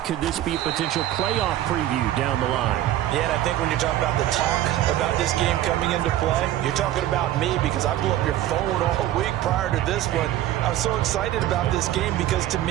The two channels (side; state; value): left; quieter; 13.3 dB